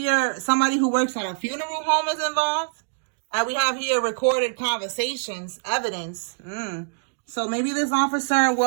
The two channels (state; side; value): silent; left; digital silence